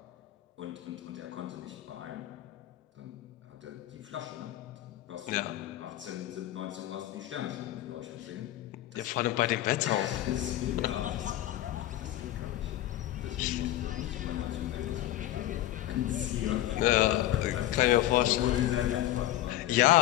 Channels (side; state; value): right; quieter; 14.2 dB